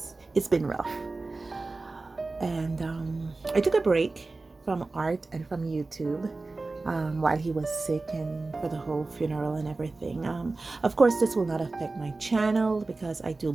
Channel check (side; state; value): left; quieter; 3.5 dB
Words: been rough. And I took a break from art and from YouTube while he was sick, and for the whole funeral and everything. Of course, this will not affect my channel because I do